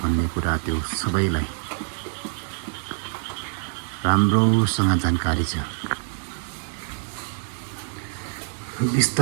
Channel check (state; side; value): silent; left; 62 dB below the other